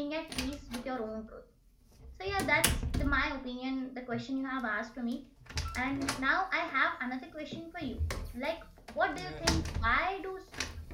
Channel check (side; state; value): both; identical; correlation 1.00